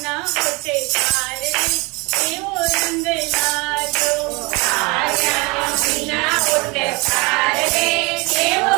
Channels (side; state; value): left; quieter; 27.0 dB